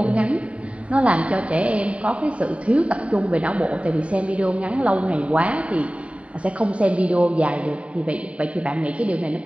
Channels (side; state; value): left; late; 0.064 ms